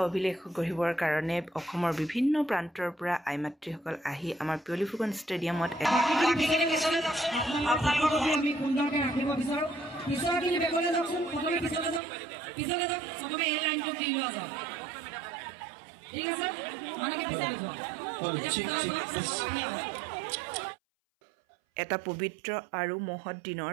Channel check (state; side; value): drops out; left; at 12.0 s